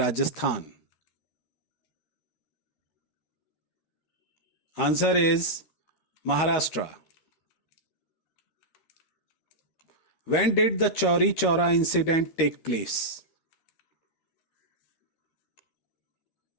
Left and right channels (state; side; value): late; right; 13 ms